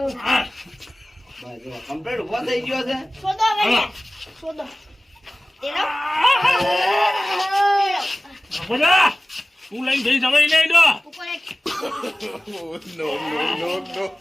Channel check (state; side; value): normal; both; correlation 0.97